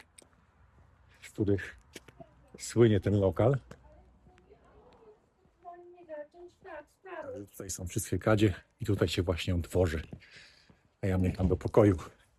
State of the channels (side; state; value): both; identical; correlation 1.00